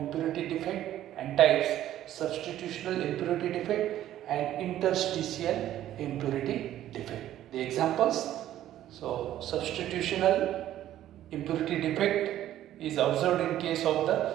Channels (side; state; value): left; quieter; 12.6 dB